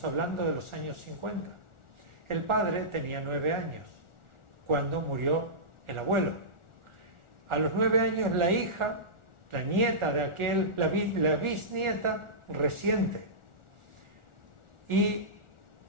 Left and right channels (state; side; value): late; left; 1.4 ms